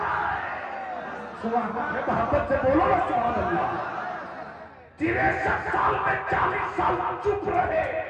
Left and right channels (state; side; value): identical; both; correlation 1.00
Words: है। मोहब्बत से बोलो ना सुभान अल्लाह। 63 साल में 40 साल चुप रहे,